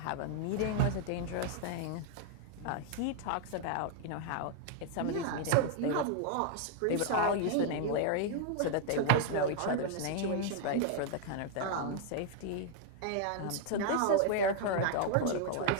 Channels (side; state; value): both; different; correlation 0.00